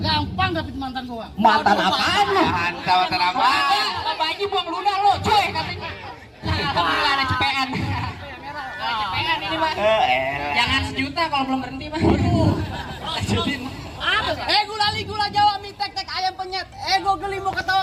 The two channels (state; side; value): identical; both; correlation 1.00